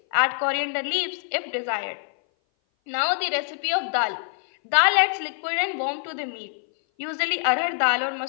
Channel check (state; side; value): silent; right; 58 dB below the other